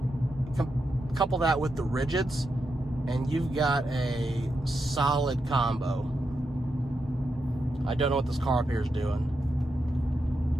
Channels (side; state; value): both; normal; correlation 0.85